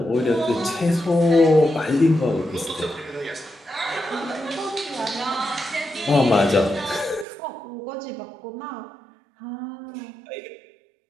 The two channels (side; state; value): left; drops out; at 7.2 s